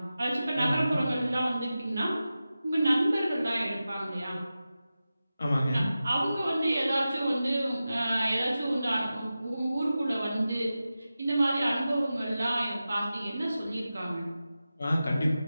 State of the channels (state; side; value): inverted; both; correlation -0.94